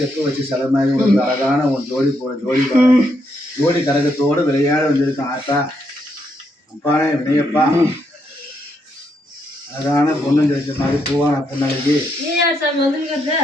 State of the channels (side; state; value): both; normal; correlation 0.78